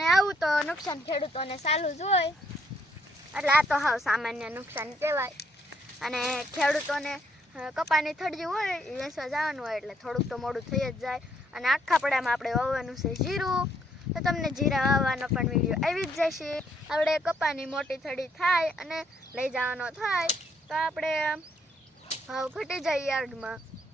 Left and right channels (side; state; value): both; normal; correlation 0.71